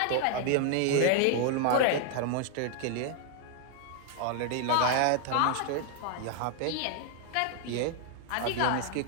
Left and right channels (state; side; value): different; both; correlation 0.00